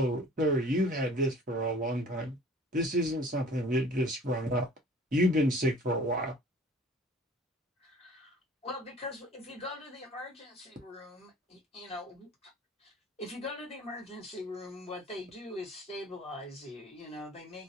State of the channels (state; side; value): normal; both; correlation 0.48